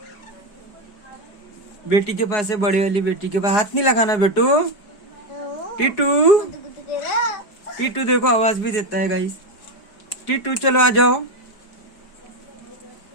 बेटी के पास है, बड़ी वाली बेटी के पास। हाथ नहीं लगाना बेटू। टीटू टीटू देखो आवाज भी देता है गाइस। टीटू चलो आ जाओ।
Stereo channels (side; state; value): right; late; 4.8 ms